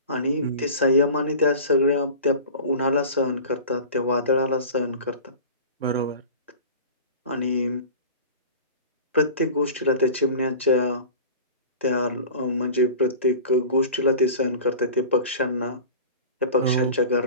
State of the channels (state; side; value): inverted; both; correlation -0.37